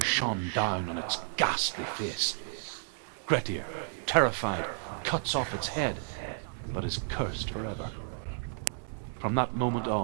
shone down on its ghastly face. Grettir, terrified, cuts off its head, but is cursed forever. From that moment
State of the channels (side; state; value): left; silent; 56 dB below the other